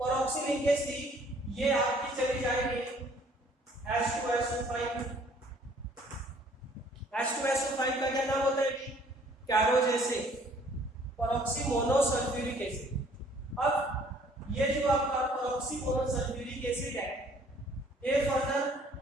लिंकेज थी ये आपकी चली जाएगी H2SO5। H2SO5 का क्या नाम होता है, कैरोज एसिड, पेरोक्सी मोनोसल्फ्यूरिक एसिड। अब ये जो आपका पेरोक्सी मोनोसल्फ्यूरिक एसिड है, ये फर्दर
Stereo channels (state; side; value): normal; both; correlation 0.58